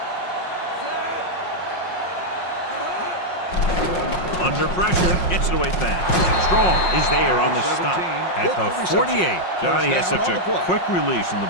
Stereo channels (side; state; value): right; late; 5.5 ms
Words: Under pressure, gets it away fast. Strong is there on the stop at the 48. Johnny has such a quick release, and the